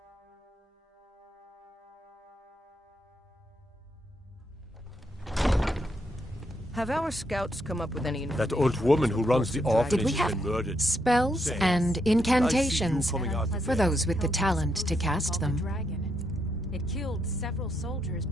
Have our scouts come up with any... That old woman who runs the orphanage Did we has have been murdered. spells and incantations for those with the talent to cast them? It killed several soldiers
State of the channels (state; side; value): normal; both; correlation 0.79